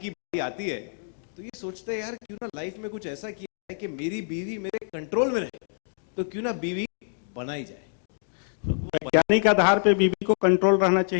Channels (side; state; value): right; silent; digital silence